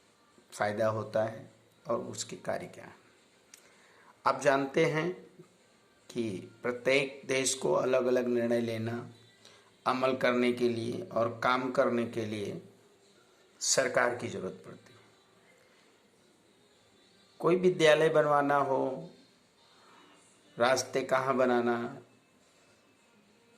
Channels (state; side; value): identical; both; correlation 1.00